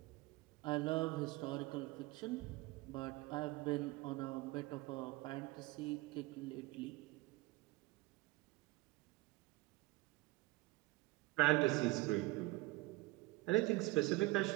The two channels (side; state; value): left; quieter; 20.2 dB